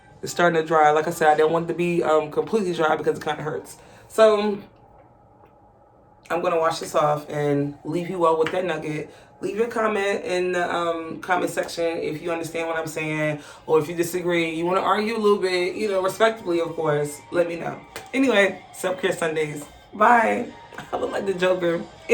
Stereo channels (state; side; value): identical; both; correlation 1.00